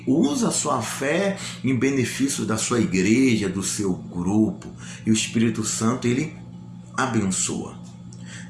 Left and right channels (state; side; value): identical; both; correlation 1.00